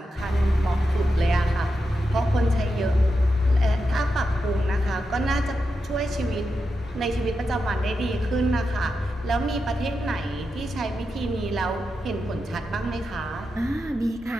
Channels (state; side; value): normal; both; correlation 0.88